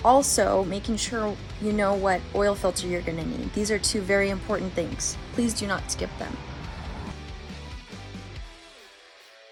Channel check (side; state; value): both; identical; correlation 1.00